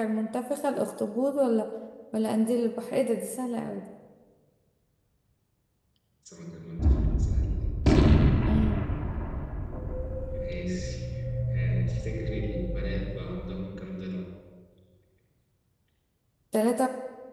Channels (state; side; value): identical; both; correlation 1.00